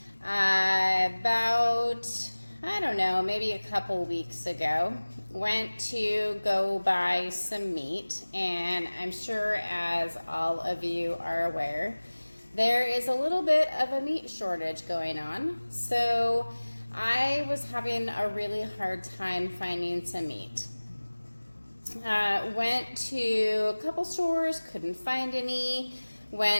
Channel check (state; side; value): inverted; both; correlation -1.00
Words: About, I don't know, maybe a couple weeks ago, went to go buy some meat, and I'm sure, as all of you are aware, there is a little bit of a meat shortage going on. So I was having a really hard time finding some meat. Went to a couple stores, couldn't find any.